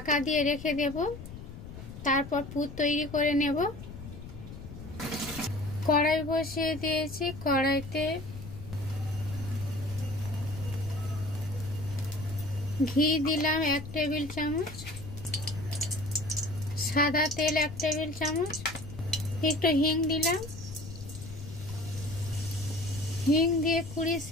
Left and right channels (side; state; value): left; noise; rumble, 12 dB below the sound